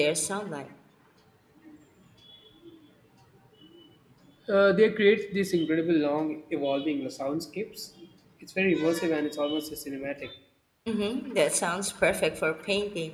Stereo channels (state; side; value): identical; both; correlation 1.00